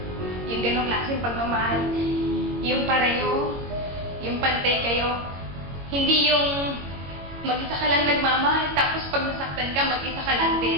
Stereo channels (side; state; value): left; late; 21 ms